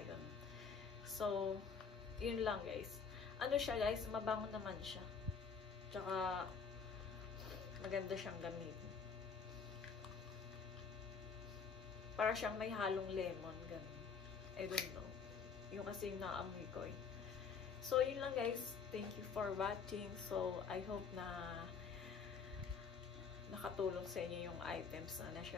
So, yun lang guys. Ano siya guys, mabango naman siya. Tsaka, maganda siyang gamitin. Para siyang may halong lemon, ganun. I don't know. Yung kasi yung naamoy ko eh. So, yun lang guys. Thank you for watching. So, I hope na nakatulong sa inyo yung items na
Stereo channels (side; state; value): right; quieter; 5.8 dB